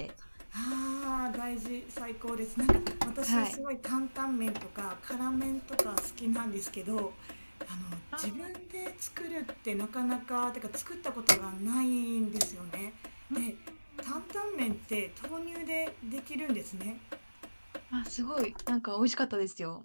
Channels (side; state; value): both; inverted; correlation -1.00